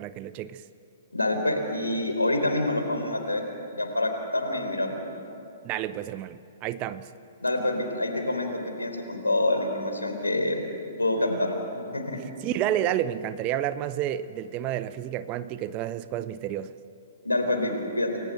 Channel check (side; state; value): both; inverted; correlation -0.55